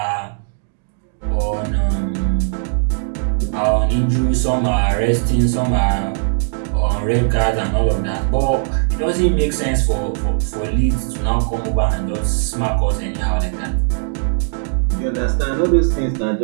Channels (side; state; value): left; silent; digital silence